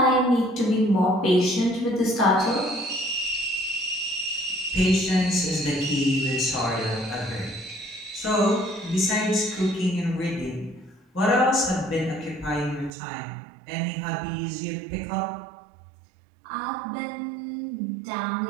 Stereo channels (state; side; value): drops out; left; at 12.9 s